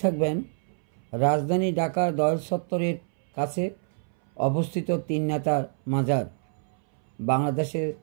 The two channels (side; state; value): left; silent; 61 dB below the other